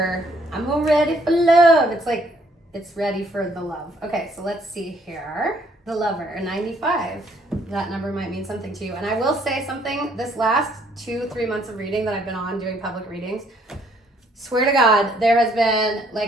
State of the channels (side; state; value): both; normal; correlation 0.65